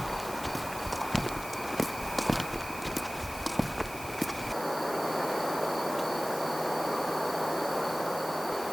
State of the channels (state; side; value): normal; both; correlation 0.98